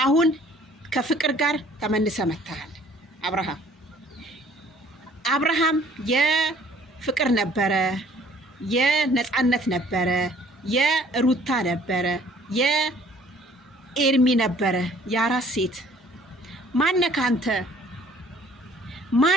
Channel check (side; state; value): both; normal; correlation 0.57